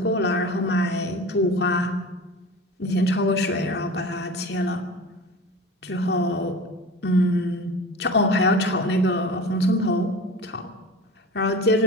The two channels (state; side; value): normal; both; correlation 0.35